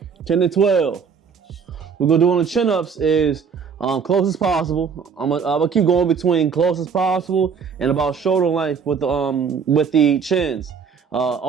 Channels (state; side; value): quieter; left; 6.3 dB